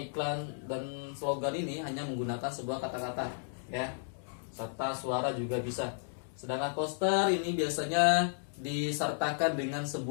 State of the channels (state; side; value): silent; right; digital silence